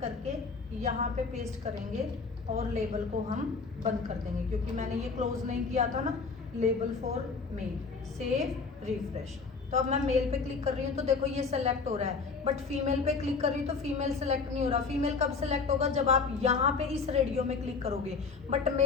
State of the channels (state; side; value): quieter; right; 4.7 dB